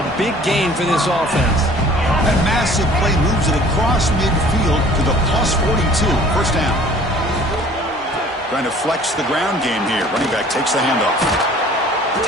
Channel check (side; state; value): both; normal; correlation 0.51